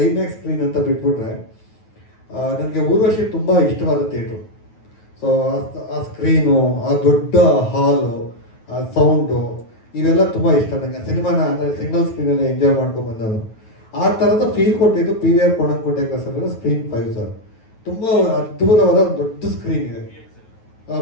ಐಮ್ಯಾಕ್ಸ್ ಸ್ಕ್ರೀನ್ ಅಂತ ಬಿಟ್ಬಿಟ್ರೆ ನನಗೆ ಊರ್ವಶಿ ತುಂಬ ಇಷ್ಟವಾದ ಥಿಯೇಟ್ರು. ಸೊ ಆ ಸ್ಕ್ರೀನು, ಆ ದೊಡ್ಡ ಹಾಲು, ಆ ಸೌಂಡು, ಇವೆಲ್ಲ ತುಂಬ ಇಷ್ಟ ನನಗೆ. ಸಿನಿಮಾನ ಅಂದರೆ ಸಿಂಗಲ್ ಸ್ಕ್ರೀನಲ್ಲಿ ಎಂಜಾಯ್ ಮಾಡ್ಕೊಂಡು ಬಂದನು. ಆ ಥರದ ಫೀಲ್ ಕೊಟ್ಟಿದ್ದು PVR ಕೋಣಂಕುಂಟೆ ಕ್ರಾಸಲ್ಲಿರೋ ಸ್ಕ್ರೀನ್ 5 ಸರ್. ತುಂಬ ಅದ್ಭುತವಾದ ದೊಡ್ಡ ಸ್ಕ್ರೀನ್ ಇದೆ.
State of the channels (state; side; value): late; right; 9.3 ms